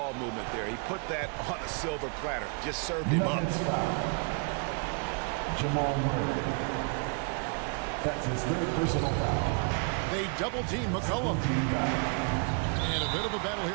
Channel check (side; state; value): left; quieter; 37.6 dB